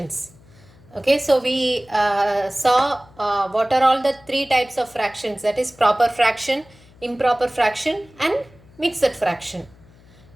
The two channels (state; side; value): noise; left; hum, 26 dB below the sound